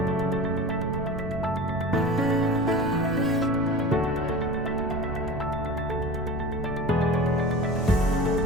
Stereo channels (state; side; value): noise; right; rumble, 9 dB below the sound